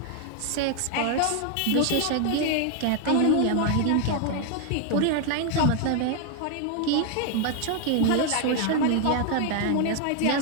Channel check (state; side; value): different; both; correlation 0.00